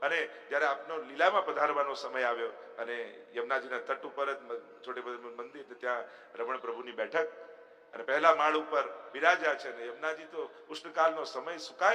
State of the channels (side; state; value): both; identical; correlation 1.00